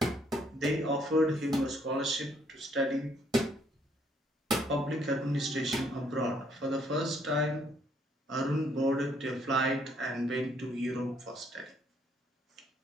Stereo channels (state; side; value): normal; both; correlation 0.68